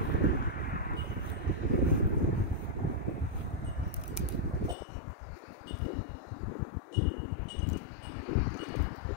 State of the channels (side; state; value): right; drops out; at 4.8 s